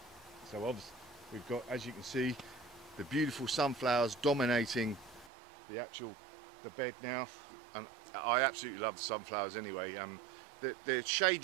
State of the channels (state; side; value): drops out; left; at 5.3 s